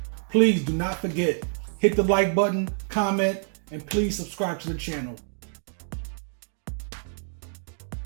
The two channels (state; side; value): silent; left; digital silence